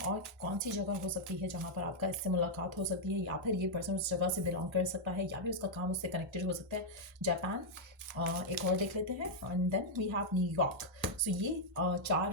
और कौन सी जगह हो सकती है जहाँ पर आपका इससे मुलाकात हो सकती है या फिर ये पर्सन उस जगह से बिलोंग कर सकता है या भी उसका काम उससे कनेक्टेड हो सकता है। जापान, एक और देख लेते हैं and then we have New York. So ये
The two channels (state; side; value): normal; both; correlation -0.04